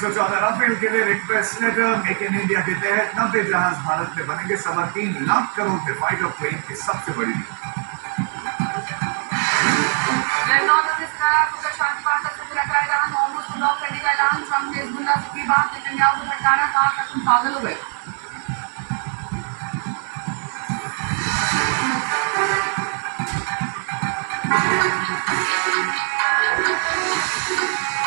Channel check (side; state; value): left; silent; 57 dB below the other